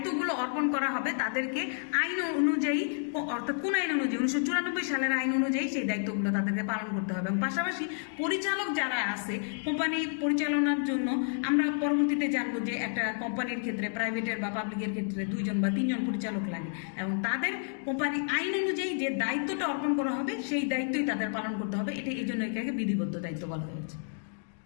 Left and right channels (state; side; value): silent; right; digital silence